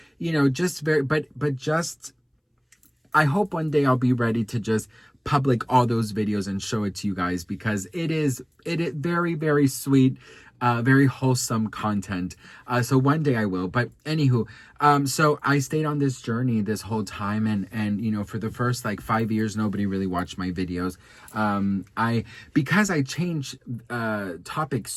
just very, but just, I hope one day I'll be ready to just public all those videos and show it to you guys, because it is very, very sweet, very wholesome content. So one day I will. But anywho, so I stayed on this journey this whole time, and for the first like 5 years, nobody really watched my videos. Because I changed topics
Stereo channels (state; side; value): identical; both; correlation 1.00